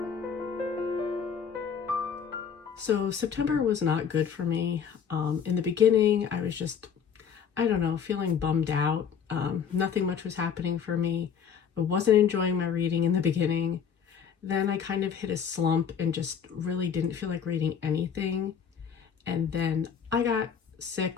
So September was not good for me. In the beginning, I was just, feeling bummed out. Nothing much was happening for me. I wasn't enjoying my reading in the beginning. Then I kind of hit a slump and just really didn't feel like reading anything. And then I got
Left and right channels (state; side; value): quieter; right; 7.3 dB